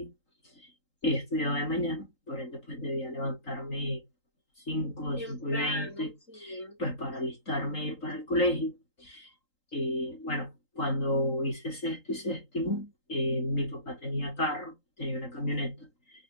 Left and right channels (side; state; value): right; late; 3.8 ms